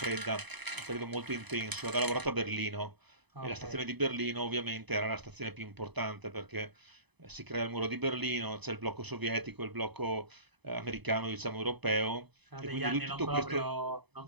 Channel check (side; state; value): left; late; 0.99 ms